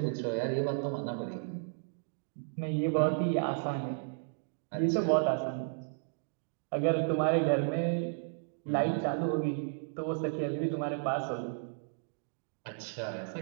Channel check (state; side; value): silent; left; digital silence